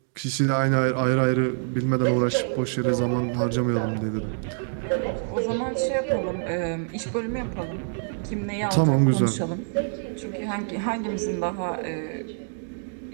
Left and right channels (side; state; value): left; silent; 61 dB below the other